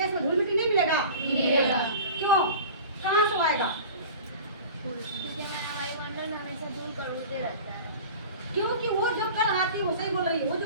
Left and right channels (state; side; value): inverted; both; correlation -0.38